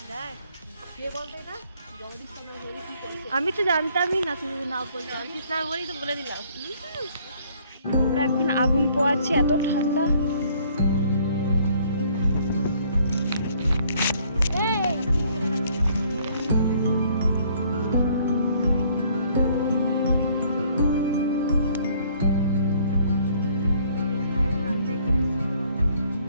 দেখ, কে বলতো এটা? জগদীশ চন্দ্র বসু কি করেছে? আমি তো জানতামই না, তুমি না বলতে। জগদীশ না বলেই তো বলে দিলাম। আমরা এখন আগুন পোয়াচ্ছি, এত ঠান্ডা।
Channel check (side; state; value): both; inverted; correlation -0.62